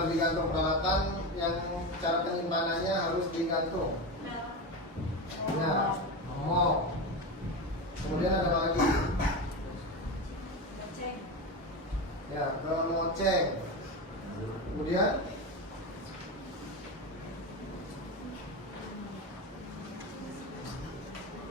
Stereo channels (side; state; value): both; normal; correlation 0.19